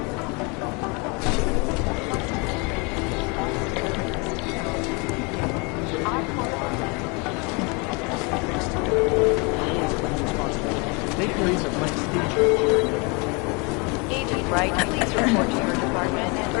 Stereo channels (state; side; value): quieter; right; 30.7 dB